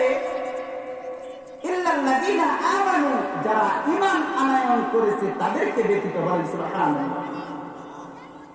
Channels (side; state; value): both; identical; correlation 1.00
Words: ইল্লাল্লাযীনা আমানু, যারা ঈমান আনয়ন করেছে তাদেরকে ব্যতীত। বলেন সুবহানাল্লাহ।